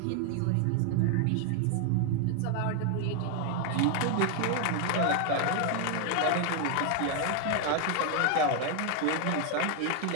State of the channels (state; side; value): different; both; correlation 0.00